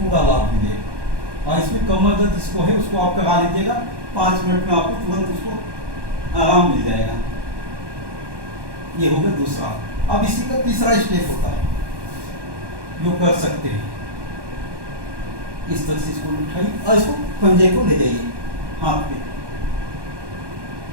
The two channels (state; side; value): late; left; 1.2 ms